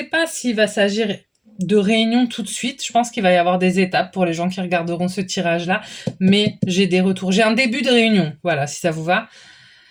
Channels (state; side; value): identical; both; correlation 1.00